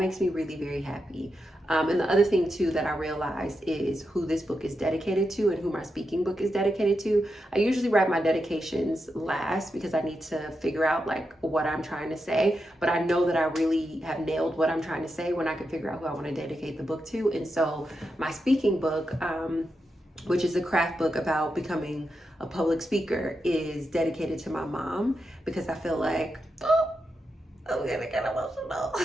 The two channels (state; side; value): normal; both; correlation 0.87